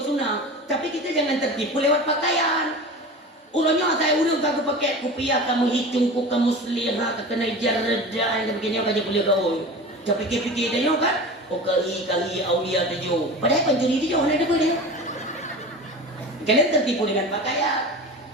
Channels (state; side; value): normal; both; correlation 0.33